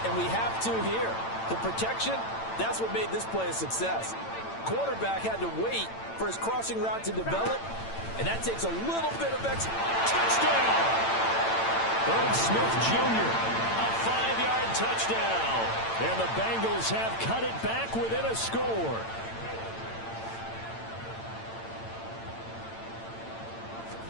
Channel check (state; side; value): late; right; 8.9 ms